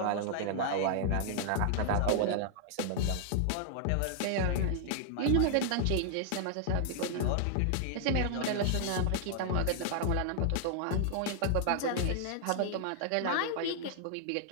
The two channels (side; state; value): both; different; correlation -0.01